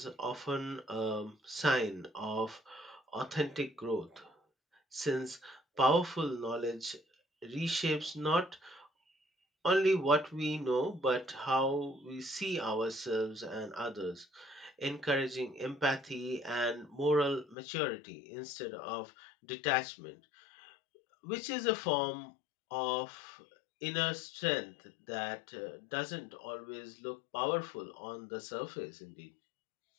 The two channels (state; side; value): drops out; right; at 17.6 s